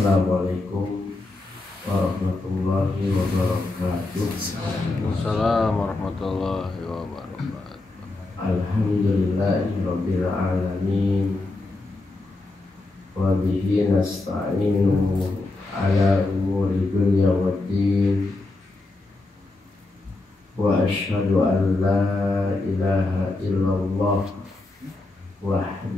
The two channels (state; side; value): quieter; right; 3.1 dB